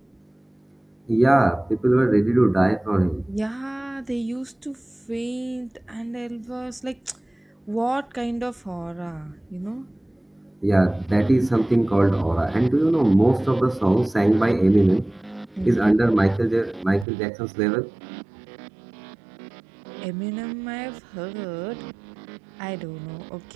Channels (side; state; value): left; drops out; at 17.1 s